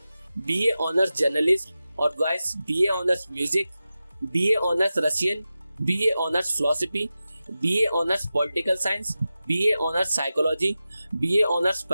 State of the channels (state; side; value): inverted; both; correlation -0.93